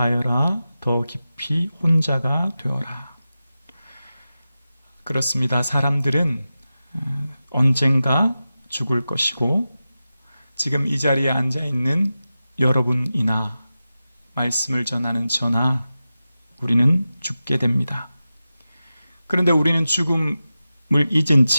더 깊이 혼자가 되어라. 그렇습니다. 사람들은 언젠가 죽을 것이고 지금 이 자리에 앉아있는 여러분이나 말씀을 전하는 저나 우리는 죽게 됩니다. 그런데 우리는 죽음을 잊은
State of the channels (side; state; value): both; inverted; correlation -0.93